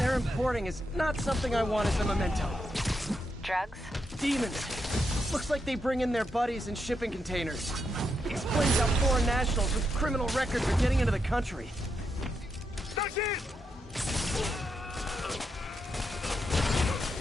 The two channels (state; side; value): normal; both; correlation 0.83